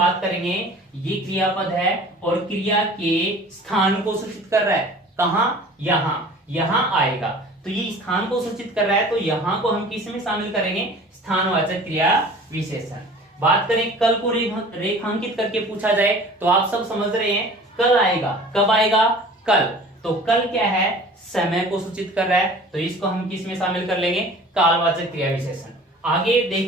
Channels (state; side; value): normal; both; correlation 0.45